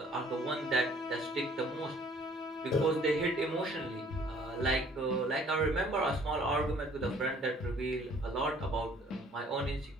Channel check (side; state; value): both; normal; correlation 0.57